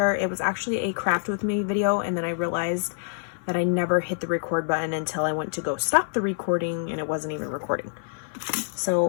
It was actually a craft with me video, and then I realized that I never hit the record button until I went to go stop the recording and it wasn't even recording.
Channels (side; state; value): right; silent; 59 dB below the other